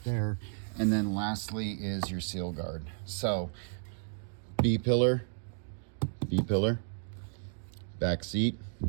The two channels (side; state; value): left; silent; digital silence